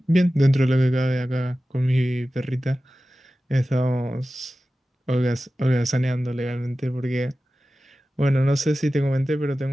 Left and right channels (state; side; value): normal; both; correlation 0.95